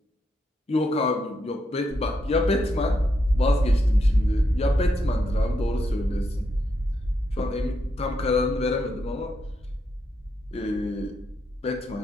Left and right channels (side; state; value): both; normal; correlation 0.81